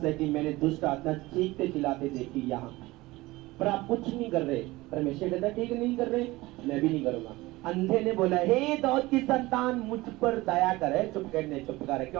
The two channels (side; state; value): left; quieter; 20.0 dB